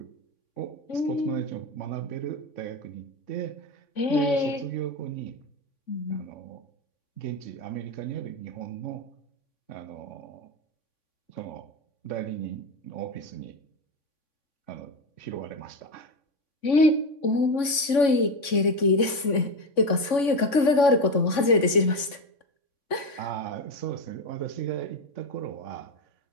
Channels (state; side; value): late; right; 3.5 ms